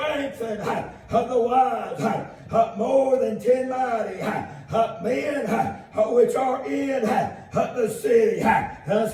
and the wise, more than 10 mighty men which are in the city.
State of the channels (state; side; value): identical; both; correlation 1.00